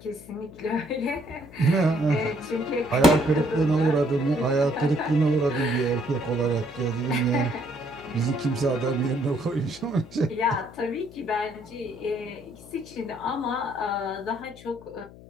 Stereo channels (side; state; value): left; noise; hum, 19 dB below the sound